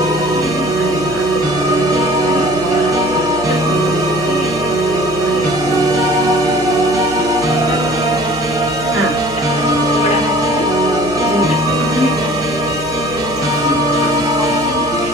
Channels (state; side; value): noise; right; hum, 15 dB below the sound